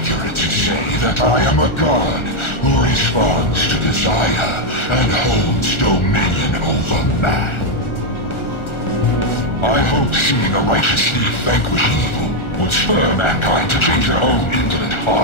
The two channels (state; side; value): late; right; 1.4 ms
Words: to say that I am a god who responds to desire and holds dominion over man. I hope seeing a righteous thief vanquish evil would spur mankind to change their own indolent